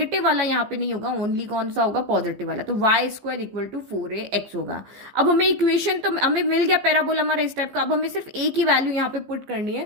वाला यहाँ पे नहीं होगा, ओनली कौन सा होगा पॉजिटिव वाला, तो Y square equal to 4ax होगा। अब हमें इक्वेशन तो हमें मिल गया पैराबोला हमारा इस टाइप का, अब हमें सिर्फ ए की वैल्यू यहाँ पे पुट करनी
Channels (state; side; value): late; left; 15 ms